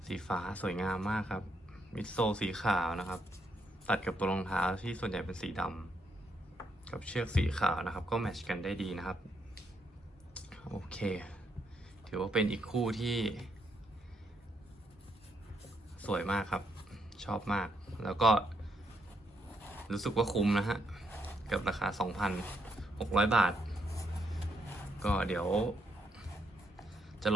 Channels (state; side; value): normal; both; correlation 0.76